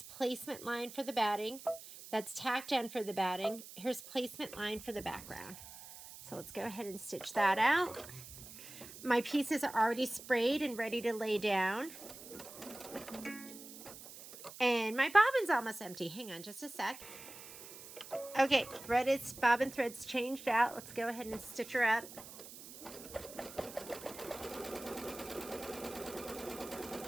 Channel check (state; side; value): noise; right; hiss, 15 dB below the sound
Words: placement line for the batting. That's tack down for the batting. Here's placement line for the background. So let's go ahead and stitch that out. My pieces are already sprayed and ready to lay down. And my bobbin's almost empty. Hang on just a sec. Okay, bobbin thread's changed out. Let's go ahead and stitch her up.